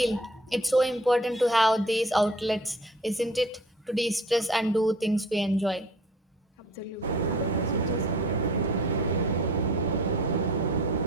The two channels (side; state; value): both; normal; correlation 0.49